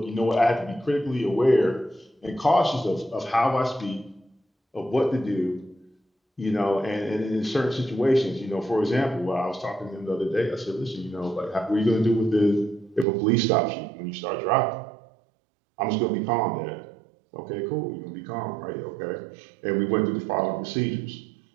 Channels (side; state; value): left; drops out; at 13.1 s